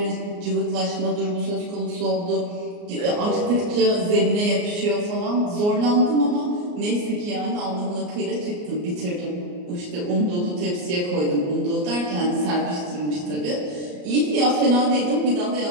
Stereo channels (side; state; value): left; late; 34 ms